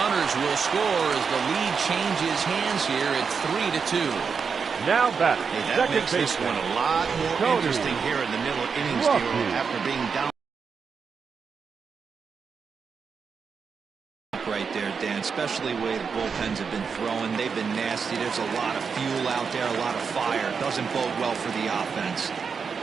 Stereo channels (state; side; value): quieter; left; 5.8 dB